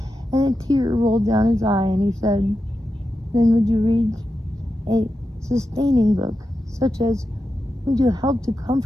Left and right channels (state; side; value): normal; both; correlation 0.90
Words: and a tear rolled down his eye, and he said, then would you read a sustaining book, such as, would you help to